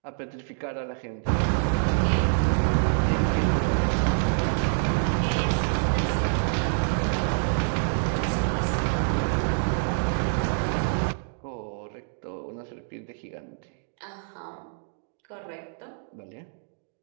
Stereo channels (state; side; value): silent; left; digital silence